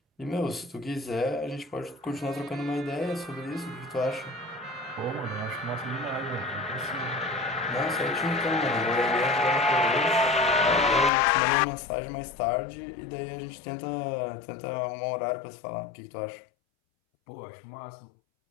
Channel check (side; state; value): right; drops out; at 11.1 s